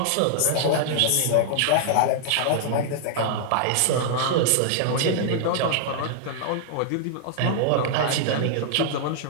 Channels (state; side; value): different; both; correlation -0.01